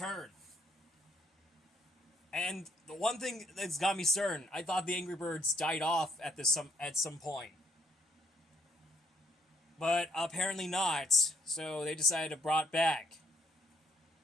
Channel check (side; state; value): both; normal; correlation 0.68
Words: And the one thing that's got me certain, I thought the Angry Birds died off at some point. But apparently not, so they decided to brought back.